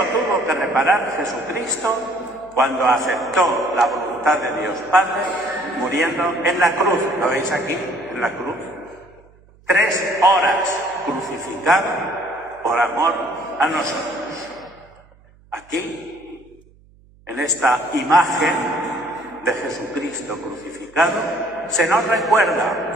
tuvo que reparar Jesucristo cuando aceptó la voluntad de Dios Padre, muriendo en la cruz. ¿Lo veis aquí? En la cruz. 3 horas crucificado por amor a nosotros. Aquí, en esta imagen de Jesucristo crucificado, se nos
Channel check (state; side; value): noise; right; hum, 28 dB below the sound